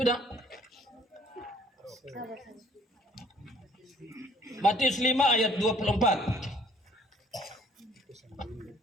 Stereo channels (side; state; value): both; normal; correlation 0.59